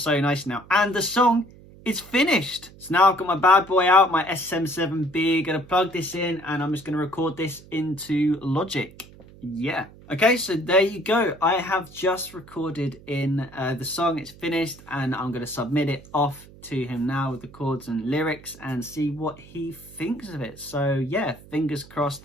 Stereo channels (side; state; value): right; noise; hum, 21 dB below the sound